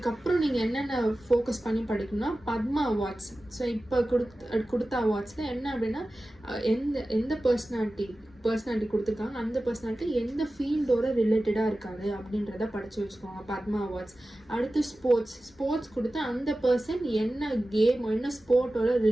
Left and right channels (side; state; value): both; normal; correlation 0.95